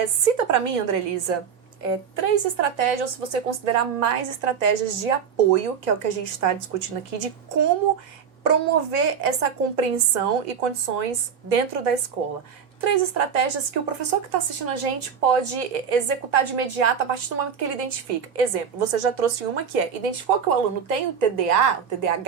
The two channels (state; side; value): quieter; left; 7.1 dB